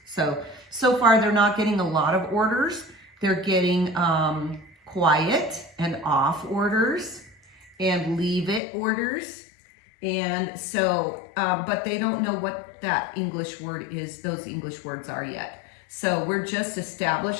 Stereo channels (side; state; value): right; drops out; at 8.6 s